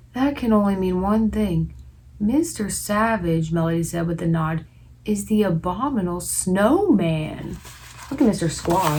That can only mean one thing. Mr. Savage, Melody said with a nod, is the Abominable Snowman. Look at Mr.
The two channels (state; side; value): identical; both; correlation 1.00